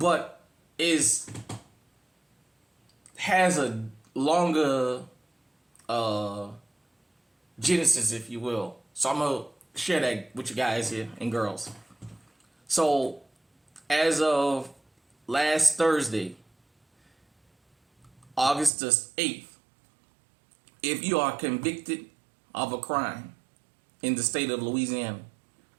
has a longer genesis, if you will. So I'm going to share that with you guys here and girls. So as of last Thursday, August the 8th, if you are convicted of a crime in the state of Louisiana,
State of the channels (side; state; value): left; drops out; at 18.7 s